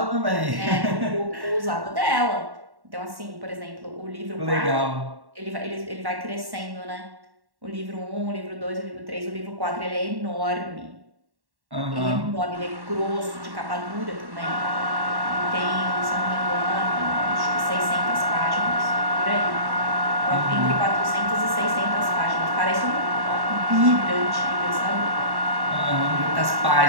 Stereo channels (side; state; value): left; late; 1.1 ms